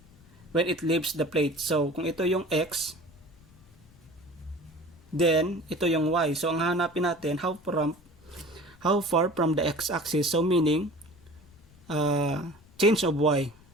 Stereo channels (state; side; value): noise; left; rumble, 26 dB below the sound